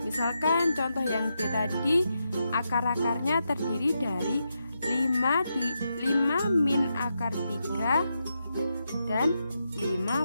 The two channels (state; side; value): inverted; both; correlation -0.85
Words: misalkan contoh yang B tadi, akar-akarnya terdiri dari 5 min akar 3 dan 5